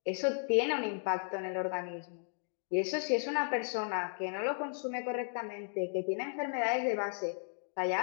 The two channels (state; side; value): silent; right; 54 dB below the other